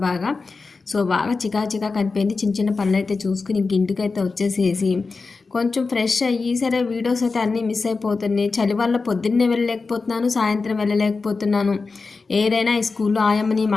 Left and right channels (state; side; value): quieter; right; 4.2 dB